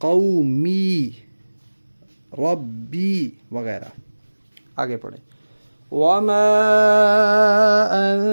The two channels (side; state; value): both; inverted; correlation -1.00